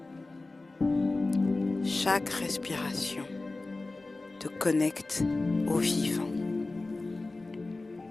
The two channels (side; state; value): right; quieter; 3.2 dB